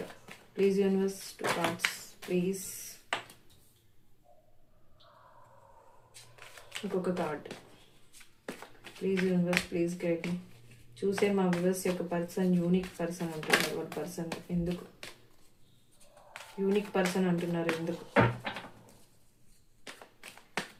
Please universe 2 cards please. ఇంకొక card. Please universe please guide me. చూసే మా viewers యొక్క person unique person అంటున్నారు. వాళ్ళ person ఎందుకు unique person అంటున్నారు, ఎందుకు?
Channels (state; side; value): identical; both; correlation 1.00